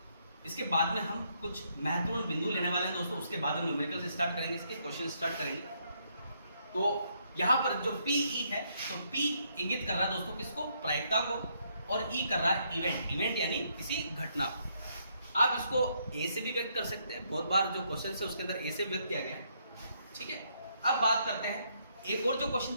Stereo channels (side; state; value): both; inverted; correlation -0.73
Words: इसके बाद में हम कुछ महत्वपूर्ण बिंदु लेने वाले हैं दोस्तों। उसके बाद हम न्यूमेरिकल से स्टार्ट करेंगे, इसके क्वेश्चन स्टार्ट करेंगे। तो यहाँ पर जो PE है, तो P इंगित कर रहा है दोस्तों किसको? प्रायिकता को, और E कर रहा है इवेंट यानी किसी घटना को। आप इसको A से भी व्यक्त कर सकते हैं, बहुत बार जो क्वेश्चन है उसके अंदर A से व्यक्त किया गया है, ठीक है। अब बात करते हैं, एक और जो क्वेश्चन